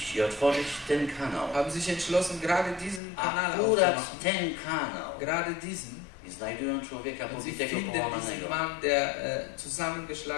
i otworzyć ten kanał. haben sich entschlossen, gerade diesen Kanal Akurat aufzumachen. ten kanał. Gerade diesen. I znajdują człowieka Und sie pobitego, finden diesen połamanego, Mann, der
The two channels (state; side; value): drops out; right; at 3.0 s